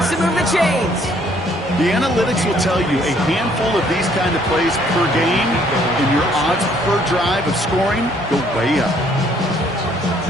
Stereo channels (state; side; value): normal; both; correlation 0.64